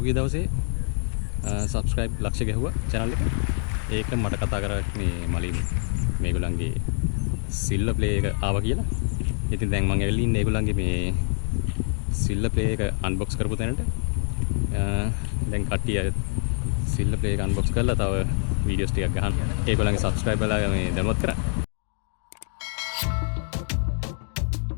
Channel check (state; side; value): silent; right; 57 dB below the other